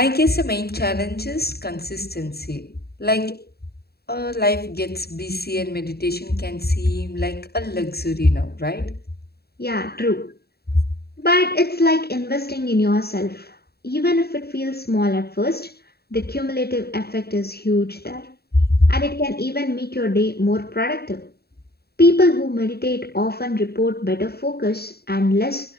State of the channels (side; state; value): right; late; 0.46 ms